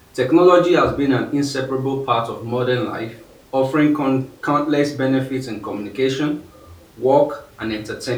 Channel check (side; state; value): both; identical; correlation 1.00